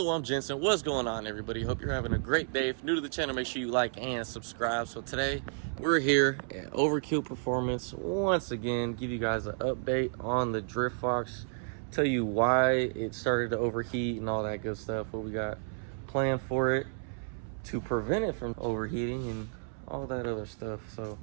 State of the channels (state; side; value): silent; left; 57 dB below the other